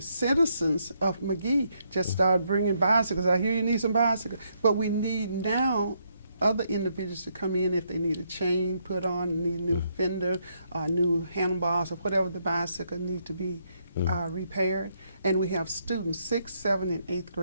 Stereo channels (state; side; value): inverted; both; correlation -0.75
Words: citizens of Mcgee just started bringing bicycles. I hear you need some bicycles, but we need now other individuals to come in if they need a chain put on, need a new fender, new handlebars, or whatever the bicycle needs to be repaired. And we have students, 6th, 7th, and 8th